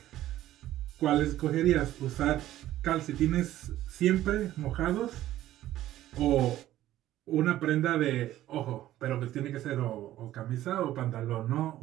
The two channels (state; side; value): quieter; left; 13.8 dB